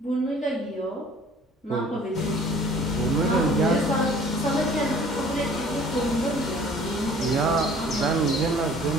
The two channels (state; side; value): normal; both; correlation 0.52